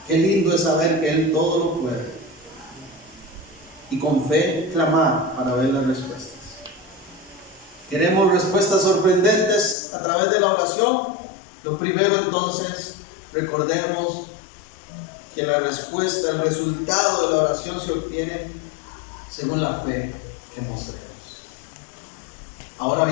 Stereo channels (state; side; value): drops out; right; at 9.8 s